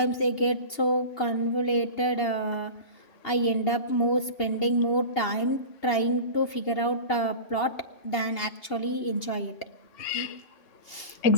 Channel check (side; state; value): right; late; 2.8 ms